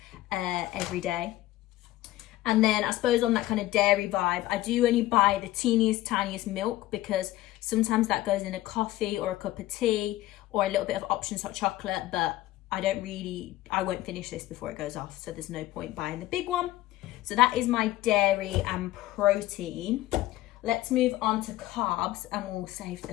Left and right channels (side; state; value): right; quieter; 16.1 dB